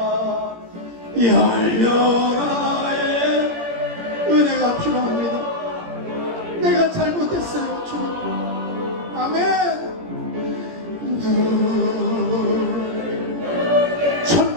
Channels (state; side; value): late; left; 17 ms